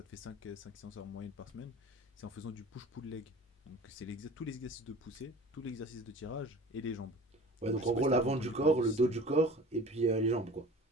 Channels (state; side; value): normal; both; correlation 0.41